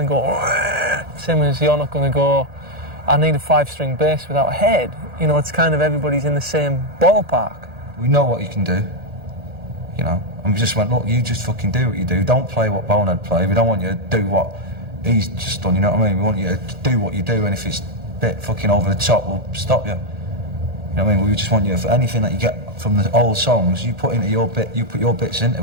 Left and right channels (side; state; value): left; late; 1.8 ms